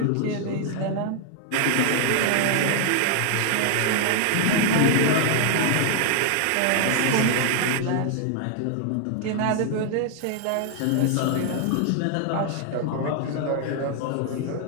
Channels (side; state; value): both; different; correlation 0.00